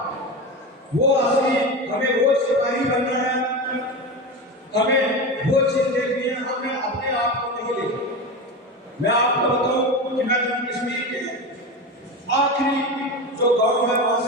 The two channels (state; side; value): normal; both; correlation 0.23